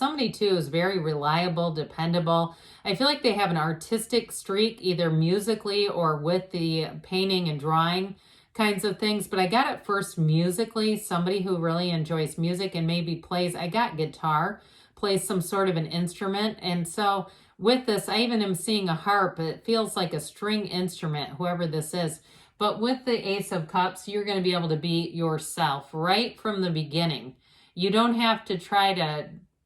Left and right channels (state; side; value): identical; both; correlation 1.00